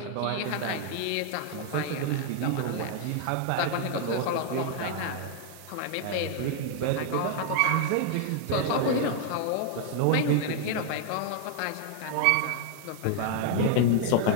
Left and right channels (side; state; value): both; different; correlation 0.00